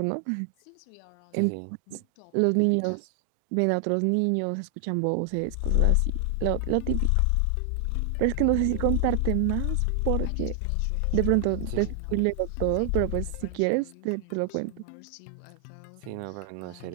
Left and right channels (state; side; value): different; both; correlation 0.00